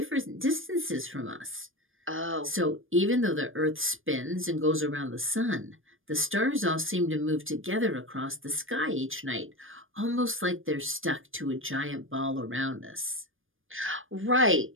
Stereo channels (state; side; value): late; left; 0.59 ms